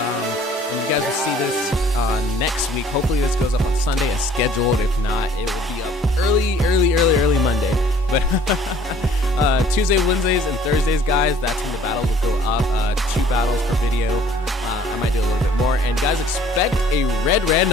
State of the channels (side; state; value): both; normal; correlation 0.55